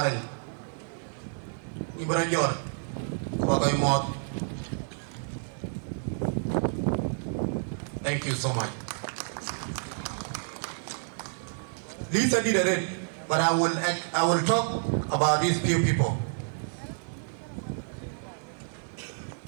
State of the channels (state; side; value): silent; left; 58 dB below the other